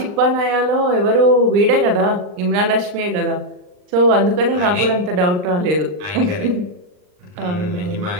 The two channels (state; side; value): late; left; 39 ms